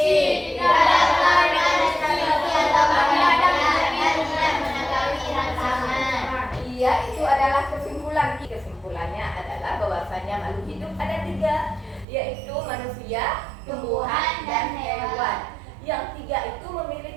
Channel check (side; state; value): left; drops out; at 12.1 s